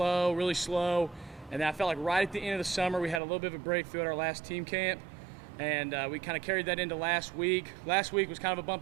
really slow. And then I felt like right at the end of the summer, we had a little bit of a breakthrough at our last team camp. And we kind of carried that into last week. Last week was kind of a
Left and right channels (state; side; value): drops out; left; at 3.2 s